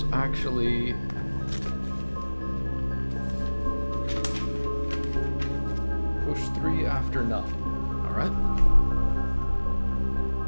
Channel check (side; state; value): both; inverted; correlation -1.00